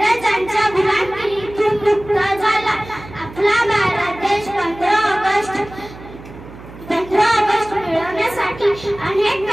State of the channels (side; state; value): right; noise; hum, 17 dB below the sound